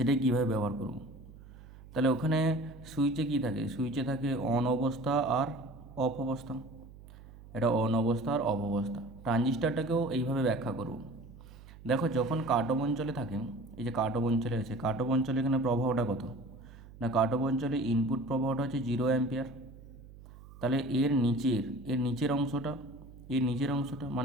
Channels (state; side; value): noise; right; hum, 19 dB below the sound